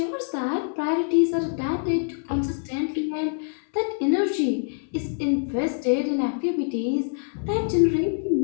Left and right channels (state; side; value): silent; right; 62 dB below the other